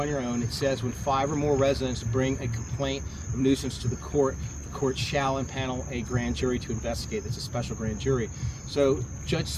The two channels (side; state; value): both; identical; correlation 1.00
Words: your own, it says when 5 or more residents bring a complaint of nuisance to the court shall impanel a grand jury to investigate. It's a special grand jury. So Judge